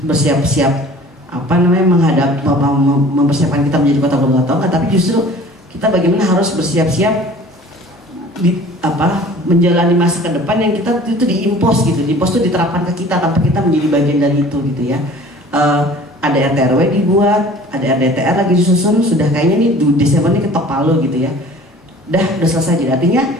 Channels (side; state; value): both; normal; correlation 0.47